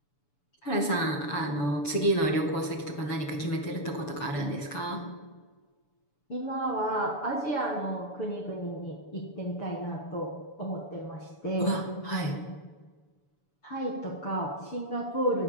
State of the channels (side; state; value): right; late; 6.9 ms